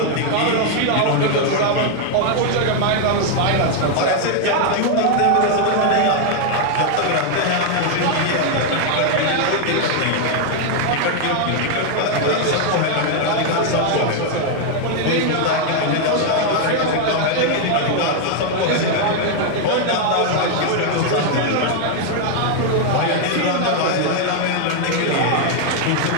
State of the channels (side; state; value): both; different; correlation 0.00